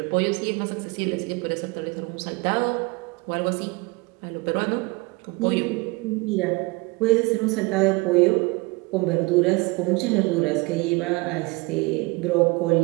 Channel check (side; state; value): left; quieter; 25.7 dB